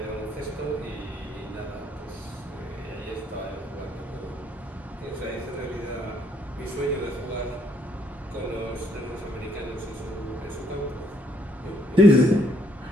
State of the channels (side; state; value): both; normal; correlation 0.69